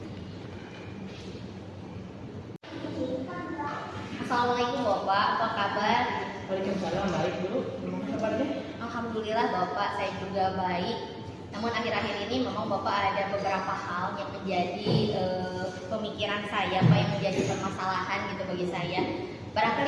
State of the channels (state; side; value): identical; both; correlation 1.00